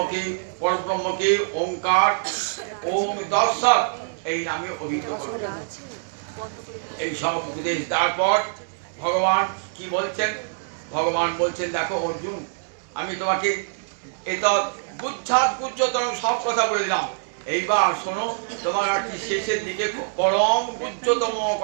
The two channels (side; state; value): left; silent; 62 dB below the other